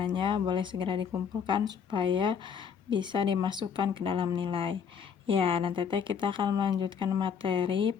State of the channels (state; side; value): quieter; right; 7.0 dB